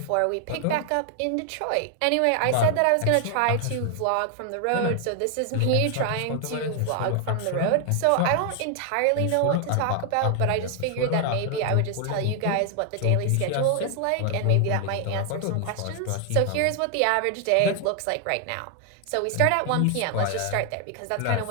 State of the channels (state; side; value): different; both; correlation 0.00